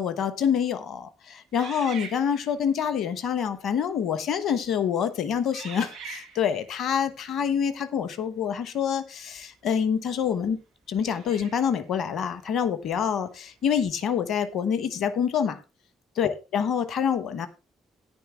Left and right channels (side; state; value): right; quieter; 7.4 dB